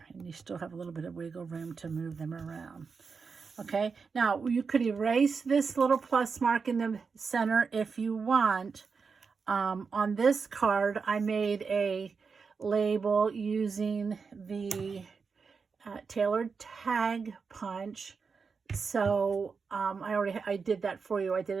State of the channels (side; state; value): left; quieter; 5.3 dB